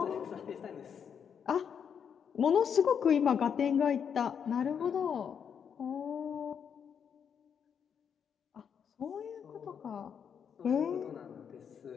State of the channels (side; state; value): right; quieter; 7.4 dB